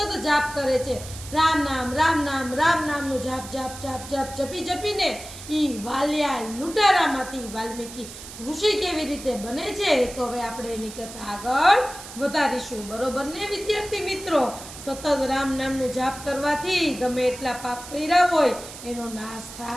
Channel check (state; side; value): noise; right; hiss, 13 dB below the sound